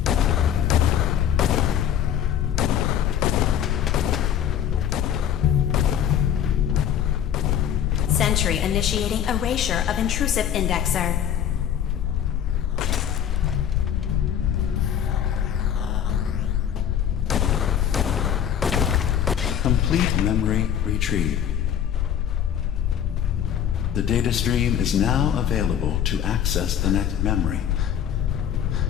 Sentry initiating erasure of intrusive indexer. Complete memory retrieved. The data stream is now available to access the next memory.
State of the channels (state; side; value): quieter; right; 9.5 dB